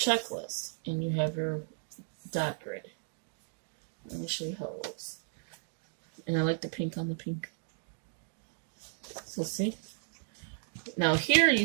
and you have your dot grid. Let me show you how it looks. And I like the pink on the pink. So see? Now here you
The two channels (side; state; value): left; silent; 55 dB below the other